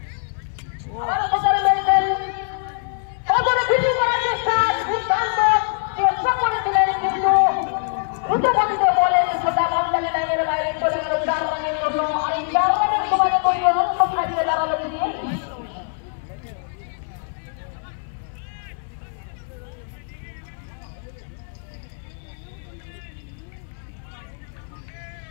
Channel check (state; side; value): silent; right; 62 dB below the other